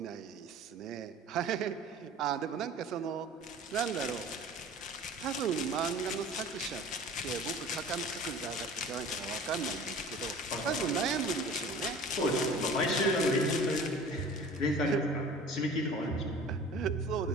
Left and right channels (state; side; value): normal; both; correlation 0.43